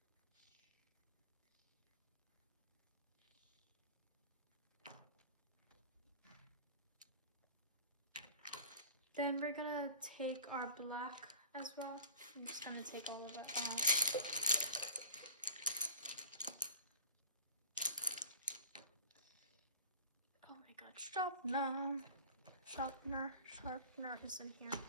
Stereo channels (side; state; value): both; inverted; correlation -0.41